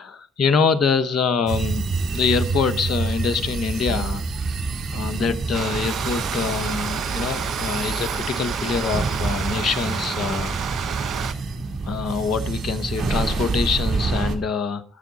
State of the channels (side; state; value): both; normal; correlation 0.63